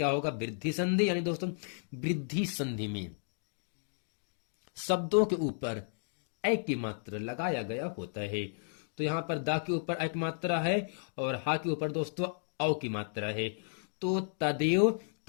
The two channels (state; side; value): silent; right; digital silence